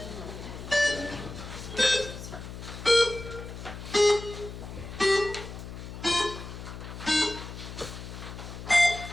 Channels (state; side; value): noise; left; hum, 10 dB below the sound